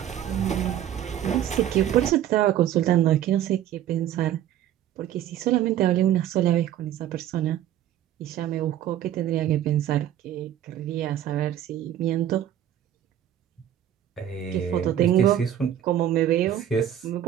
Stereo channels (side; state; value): left; quieter; 11.1 dB